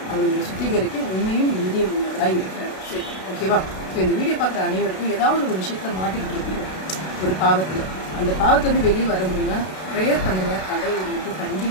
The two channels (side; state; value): right; late; 32 ms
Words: அவர் உங்களை சுத்திகரிக்க உண்மையும் நீதியும் உள்ளவராக இருக்கிறார். சரி, ஓகேவா? ஸோ இந்த வீடியோ பார்க்குற அனைவருக்கும் ஏதாவது ஒரு விஷயத்தில் மாட்டிக்கிட்டு இருப்பீங்க ஒரு பாவத்தில். அந்த பாவத்துலேருந்து வெளியே வர முடியும்னா ப்ரேயர் பண்ணுங்கள், கடவுள் உங்களுக்கு